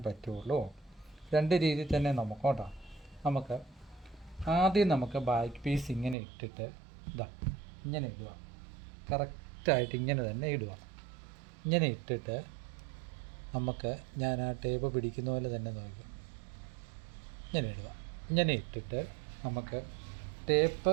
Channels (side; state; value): left; drops out; at 6.2 s